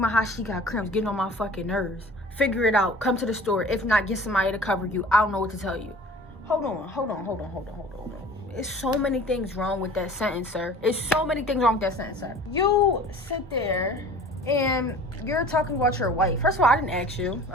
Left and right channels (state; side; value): normal; both; correlation 0.44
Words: how she got cramps, getting on my fucking nerves. Figure it out. Come to the store. If not, get somebody to cover you. I don't know what to tell you. Hold on. It's so many things wrong with that sentence, sir. You sit there and you're talking about your wife. First of all, I didn't ask you